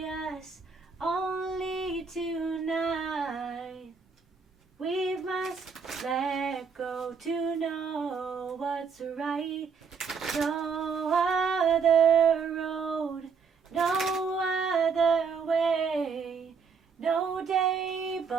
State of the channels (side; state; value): left; quieter; 5.7 dB